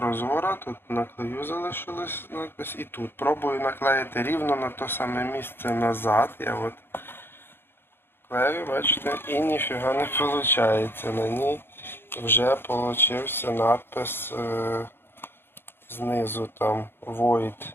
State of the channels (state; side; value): late; right; 0.11 ms